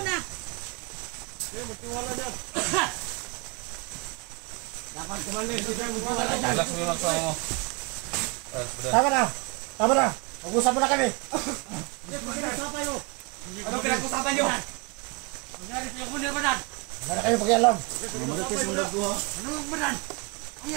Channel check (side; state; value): left; quieter; 29.4 dB